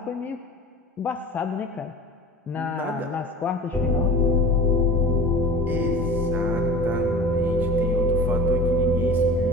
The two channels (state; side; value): normal; both; correlation 0.38